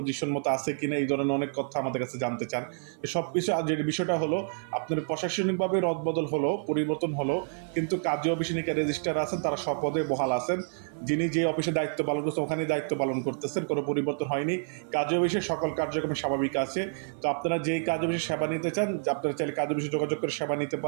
মতো আছে কিনা, এই ধরনের অনেক কথা আমাদের কাছে জানতে চান। সব কিছু যে বিষয়টা হলো, আপনার প্রশাসনিকভাবে রদবদল হলো, পরিবর্তন হলো, কিন্তু কাজী অফিসে নিকা রেজিস্ট্রার আছেন, তারা স্বপদে বহাল আছেন। যিনি যে অফিসে দায়িত্ব পালন করছেন ওখানে দায়িত্ব পালন করতেছেন, কোনো পরিবর্তন হয়নি। কাজী অফিসে সকল কার্যক্রম স্বাভাবিক আছে। তো আপনারা যেই কাজী অফিসে সেবা নিতে চান, আপনারা চাইলে কাজী অফিসে যোগাযোগ করে সেবা নিতে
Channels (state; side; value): silent; left; 56 dB below the other